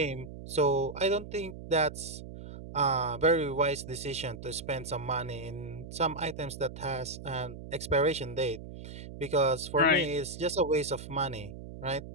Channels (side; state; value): right; noise; hum, 12 dB below the sound